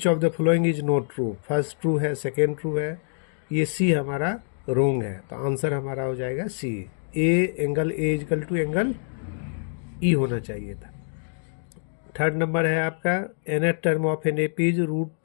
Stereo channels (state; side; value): silent; right; digital silence